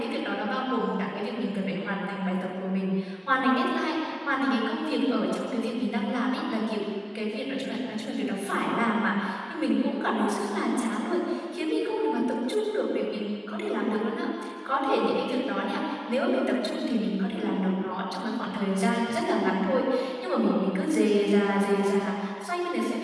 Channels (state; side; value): identical; both; correlation 1.00